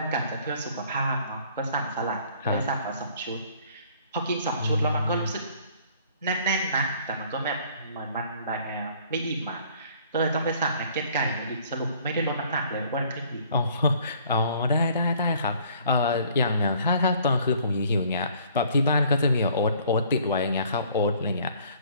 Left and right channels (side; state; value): both; inverted; correlation -0.57